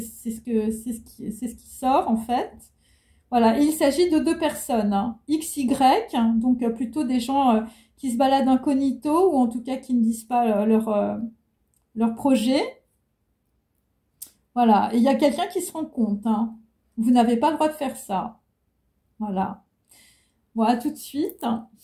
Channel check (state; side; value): identical; both; correlation 1.00